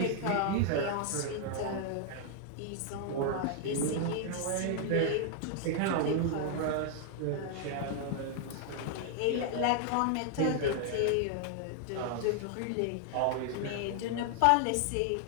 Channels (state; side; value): different; both; correlation 0.00